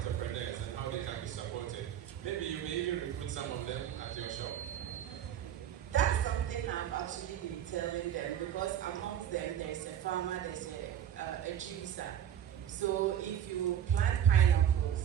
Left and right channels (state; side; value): quieter; left; 10.0 dB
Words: and how they can be supported. Maybe you may even recruit some of them at your shop. That's something I'm actually been telling them, because amongst them there's a farmer, there's a juicer. So if you plant pineapples,